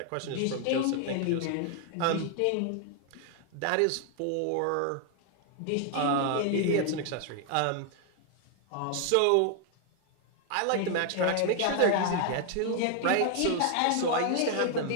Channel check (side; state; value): both; different; correlation 0.00